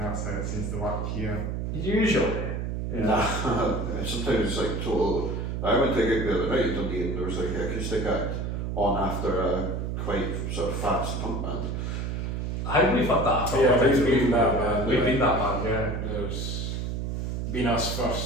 how it seems to work here. Usually. Yeah. Nah, sometimes it's like total... I went to a gig the other night in Dundee and there was like an acoustic act on after a quite sort of fast punk band. I think we've had that. Yeah, I think we've been that band. We've been that band, yeah. There's been us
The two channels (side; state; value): right; noise; hum, 3 dB below the sound